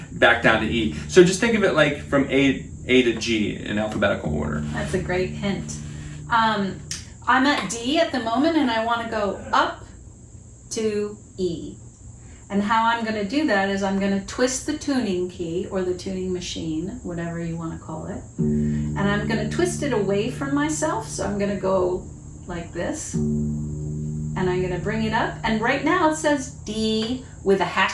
down to E. So just think of it like from A to G in alphabetical order. That's a great hint. I'm at D at the moment, and I want to go up to E. And how I'm going to do that is I'm going to twist the tuning key, or the tuning machine, whatever you want to call it. And I'm going to twist it away from myself. So I'm going to go like this. And I'm going to bring it up. And right now it says D with a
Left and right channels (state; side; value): identical; both; correlation 1.00